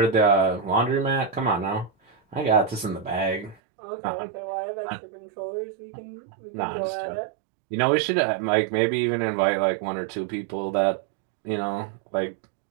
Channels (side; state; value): left; drops out; at 3.6 s